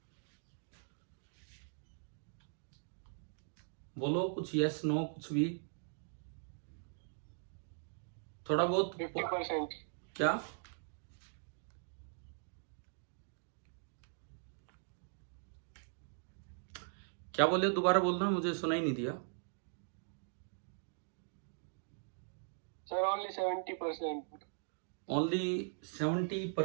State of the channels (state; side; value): silent; left; digital silence